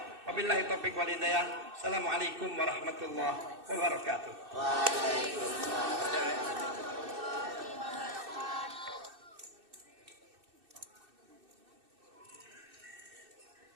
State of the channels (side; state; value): left; late; 2.6 ms